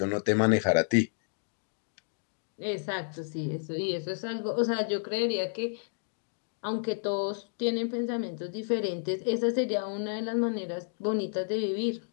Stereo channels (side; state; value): right; silent; digital silence